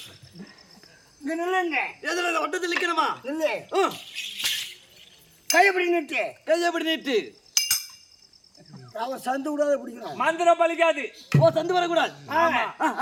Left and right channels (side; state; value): both; identical; correlation 1.00